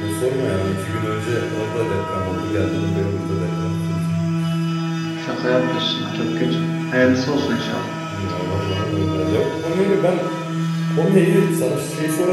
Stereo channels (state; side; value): identical; both; correlation 1.00